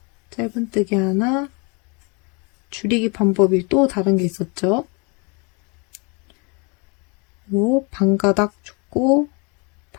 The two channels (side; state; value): right; quieter; 31.9 dB